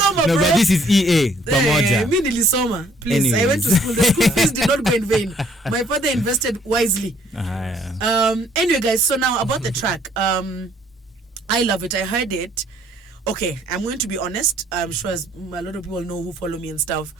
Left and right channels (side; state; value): both; normal; correlation 0.62